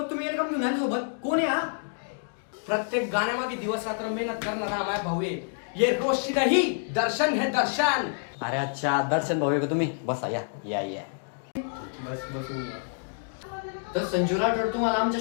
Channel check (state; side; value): silent; right; digital silence